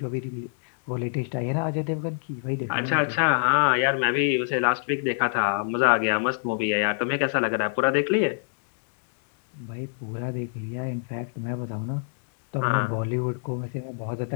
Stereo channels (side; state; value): right; silent; 61 dB below the other